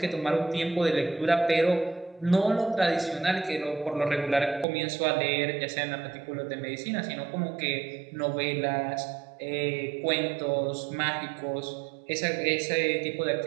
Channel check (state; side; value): drops out; left; at 4.7 s